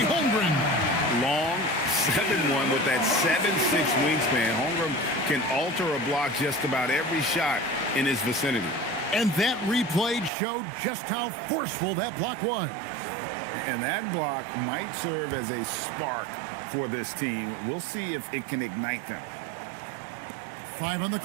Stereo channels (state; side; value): drops out; left; at 10.3 s